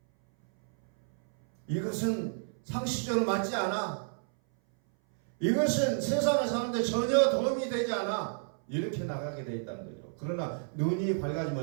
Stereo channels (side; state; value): left; silent; 57 dB below the other